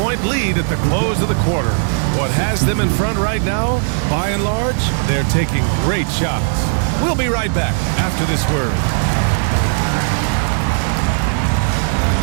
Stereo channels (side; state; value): left; silent; 55 dB below the other